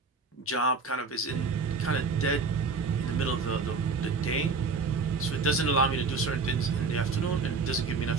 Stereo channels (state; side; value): quieter; left; 4.3 dB